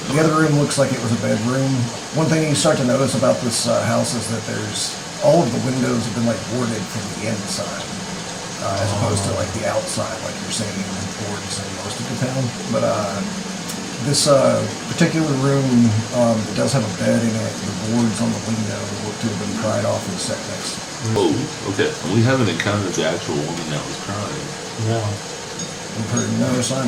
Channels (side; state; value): both; identical; correlation 1.00